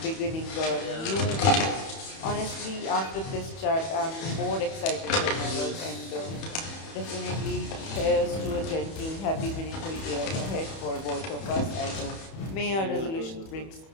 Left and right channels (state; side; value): late; right; 31 ms